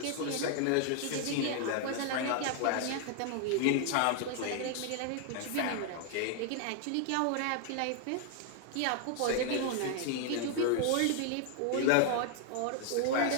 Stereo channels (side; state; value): both; different; correlation 0.00